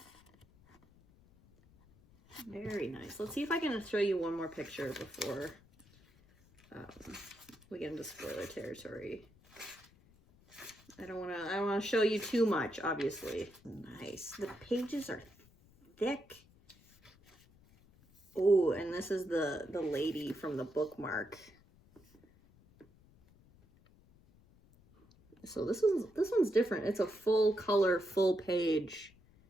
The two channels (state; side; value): noise; left; rumble, 28 dB below the sound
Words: Very nice. Let's see if I can show you one more picture before we get into spoiler territory. I don't want to show you too much, obviously. Nice. The pages are thick. Oh, and this is the lady from the bookmark. So this one's different. It's a full color, full page.